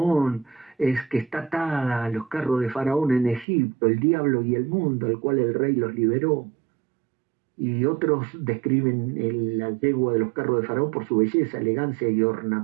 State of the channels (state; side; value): drops out; left; at 3.5 s